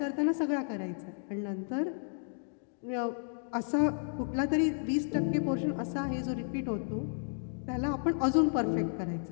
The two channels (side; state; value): right; silent; digital silence